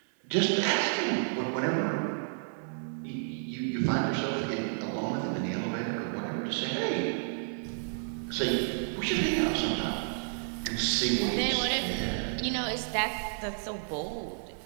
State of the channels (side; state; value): left; silent; 57 dB below the other